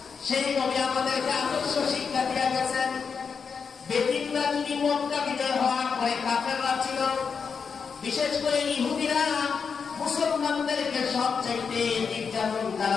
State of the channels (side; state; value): right; quieter; 5.9 dB